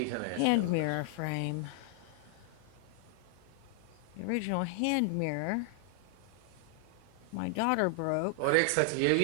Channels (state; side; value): different; both; correlation 0.00